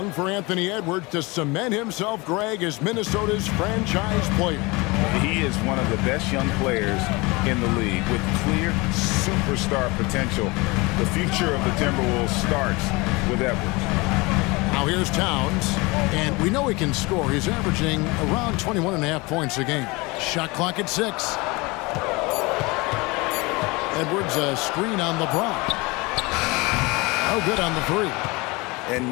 for Anthony Edwards to cement himself, Greg, as Minnesota's franchise player. He is one of the best young players in the league with clear superstar potential. The future of the Timberwolves starts with Edwards. Now here's Towns, and we know he can score. He's averaging around 21.5 points a game. Shot clock at 6. Edwards, a screen on LeBron. No good on the 3. And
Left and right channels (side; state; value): right; quieter; 24.8 dB